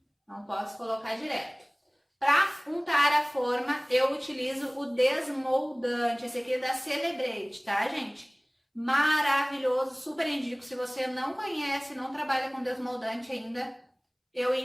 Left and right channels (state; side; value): identical; both; correlation 1.00